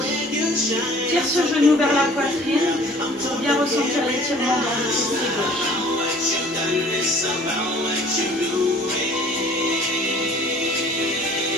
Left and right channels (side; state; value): both; normal; correlation 0.51